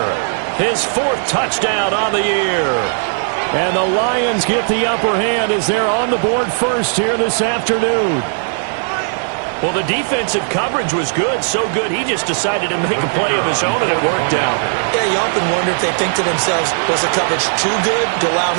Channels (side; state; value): left; silent; digital silence